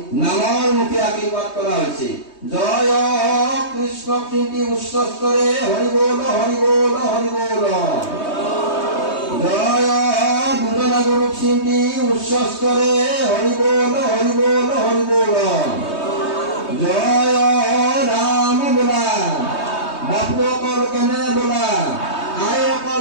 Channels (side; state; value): right; late; 3.2 ms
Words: নামৰ মুখে আশীৰ্বাদ কৰা হৈছে। জয় কৃষ্ণ কীৰ্তি উচ্চস্তৰে হৰি বল হৰি বল হৰি বল। জয় দুজনা গুৰু কীৰ্তি উচ্চস্তৰে হৰি বল হৰি বল হৰি বল। জয় ৰাম বোলা, বাপুকৰ কেনে বোলা, আয়কৰ